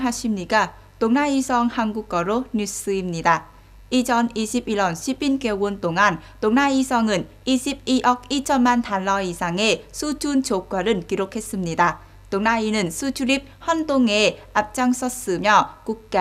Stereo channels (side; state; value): both; identical; correlation 1.00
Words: 동나이성 한국어로 뉴스입니다. 2021년 시빈개월 동안 동나이성은 22억 2천만 달러 이상의 수출 조과를 기록했습니다. 동나이는 수출입 환동에 앞장섰으며